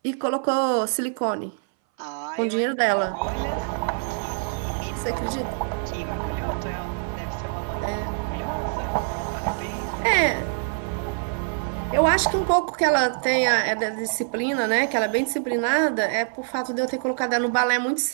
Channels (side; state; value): left; silent; 60 dB below the other